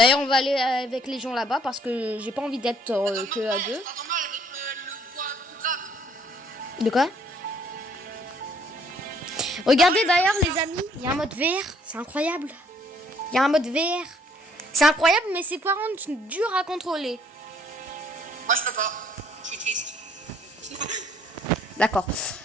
on va aller avec les gens là-bas parce que j'ai pas envie d'être que à deux. De quoi? Regardez d'ailleurs les amis, il y a un mode VR, c'est incroyable. Il y a un mode VR. C'est incroyable mais c'est par contre dur à contrôler. Moi je peux pas, je suis triste. D'accord.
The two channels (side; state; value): both; normal; correlation 0.63